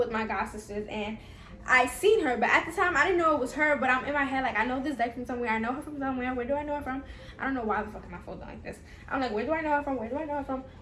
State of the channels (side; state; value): both; identical; correlation 1.00